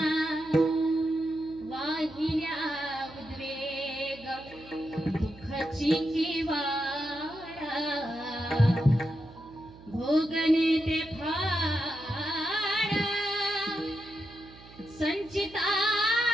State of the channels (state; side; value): noise; right; hum, 20 dB below the sound